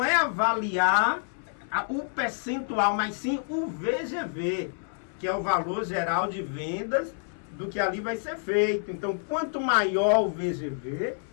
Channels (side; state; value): right; silent; 59 dB below the other